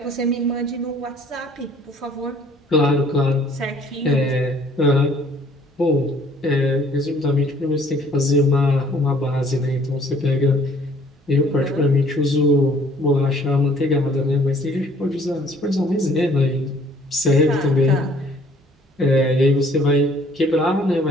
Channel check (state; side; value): normal; both; correlation 0.58